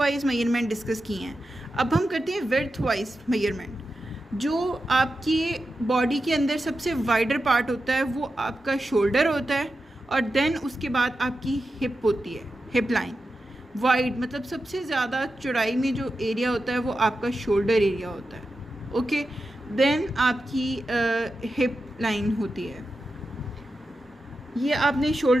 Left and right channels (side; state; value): both; normal; correlation 0.90